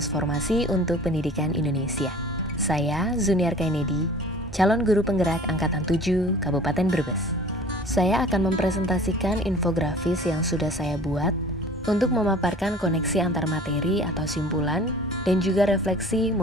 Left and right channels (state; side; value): normal; both; correlation 0.46